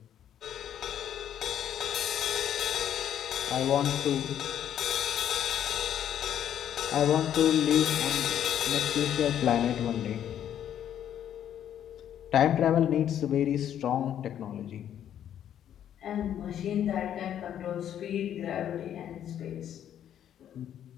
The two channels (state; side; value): quieter; right; 10.2 dB